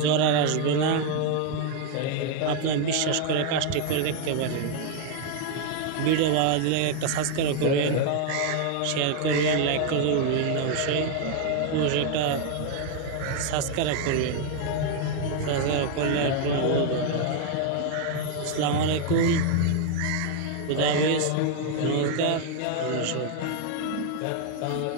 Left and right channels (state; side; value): different; both; correlation 0.00